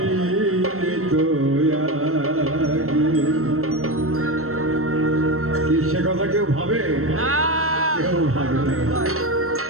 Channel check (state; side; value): late; left; 0.63 ms